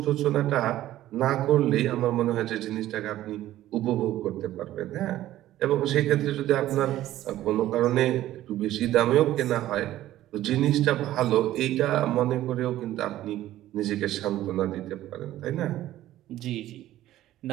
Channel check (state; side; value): quieter; left; 14.1 dB